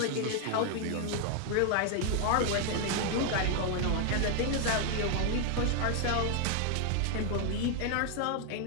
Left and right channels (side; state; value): both; different; correlation 0.00